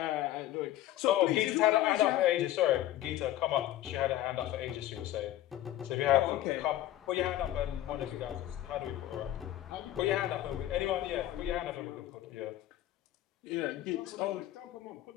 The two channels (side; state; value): right; quieter; 13.7 dB